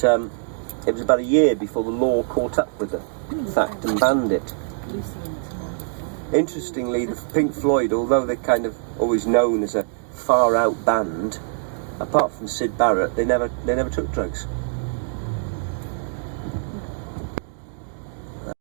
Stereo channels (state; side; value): silent; left; digital silence